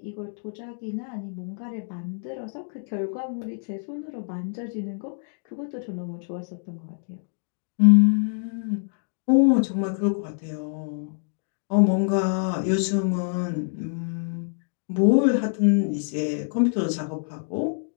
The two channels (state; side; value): silent; right; digital silence